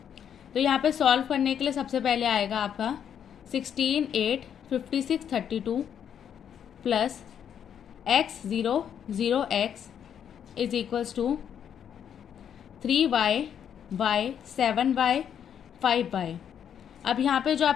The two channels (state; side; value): quieter; right; 8.7 dB